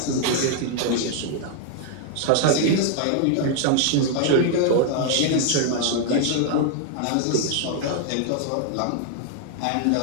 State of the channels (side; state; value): both; different; correlation 0.00